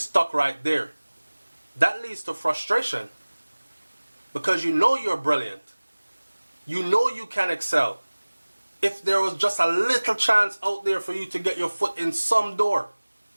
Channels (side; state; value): both; inverted; correlation -1.00